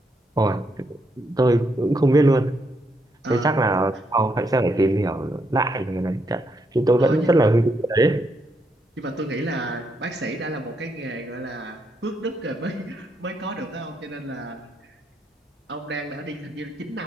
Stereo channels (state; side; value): normal; both; correlation 0.78